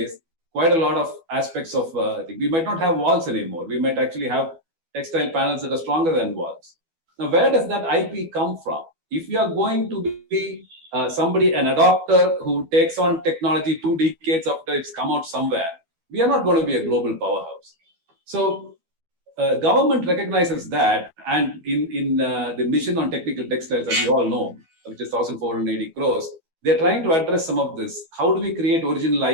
quite a lot of aspects of we might not have walls anymore. We might actually have textile panels that are stronger than walls. Now, where does that IP come from? If you are going to be an adopter who takes on technology 2 decades after it's come out somewhere, we are not going to be a global powerhouse. So government recognizes that, and in the mission on technical textiles, as you all know, which is 1,480 crores, They're trying to address some of this. How do we create original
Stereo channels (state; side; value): late; left; 12 ms